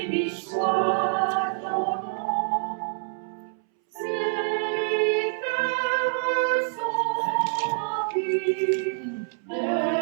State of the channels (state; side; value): silent; left; 61 dB below the other